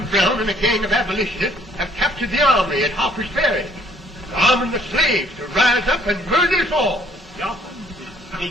Brown and a gang of abolitionists have captured the armory at Harper's Ferry, arming the slaves to rise up and murder us all. Yeah, they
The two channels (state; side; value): normal; both; correlation 0.61